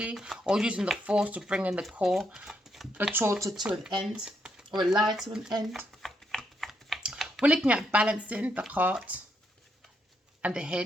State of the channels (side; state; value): both; normal; correlation 0.77